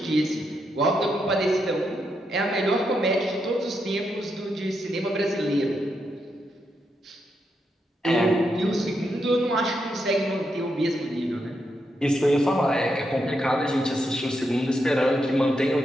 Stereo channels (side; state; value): both; normal; correlation 0.82